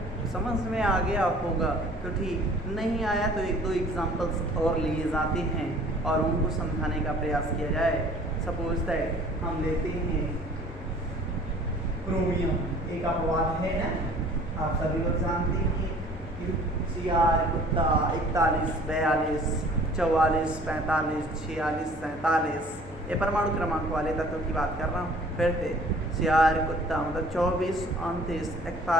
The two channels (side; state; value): left; noise; hum, 17 dB below the sound